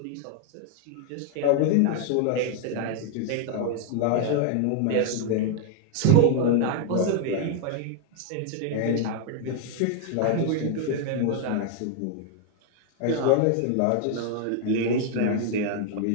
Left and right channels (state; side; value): different; both; correlation 0.00